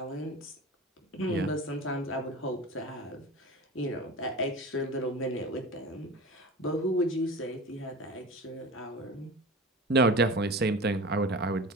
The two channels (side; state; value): both; normal; correlation 0.33